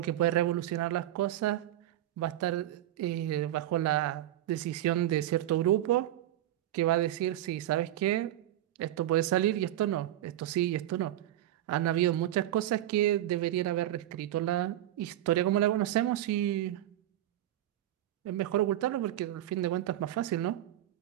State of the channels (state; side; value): quieter; left; 13.3 dB